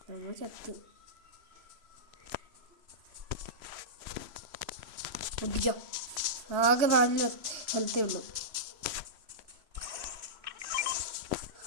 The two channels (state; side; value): late; left; 3.0 ms